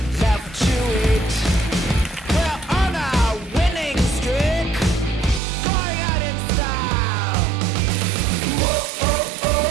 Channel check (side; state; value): left; drops out; at 5.4 s